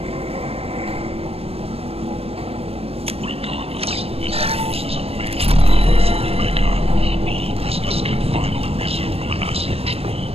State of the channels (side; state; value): left; late; 0.28 ms